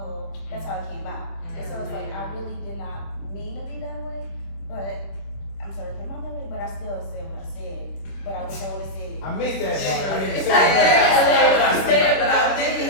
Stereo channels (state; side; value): late; right; 26 ms